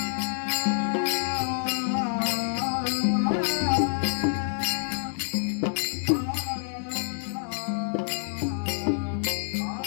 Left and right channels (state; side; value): silent; right; digital silence